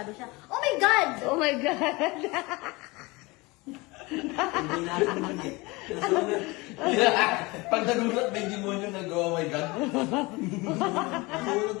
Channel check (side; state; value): right; quieter; 24.0 dB